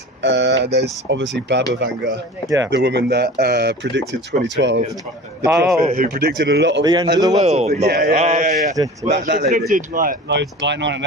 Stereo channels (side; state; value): both; normal; correlation 0.37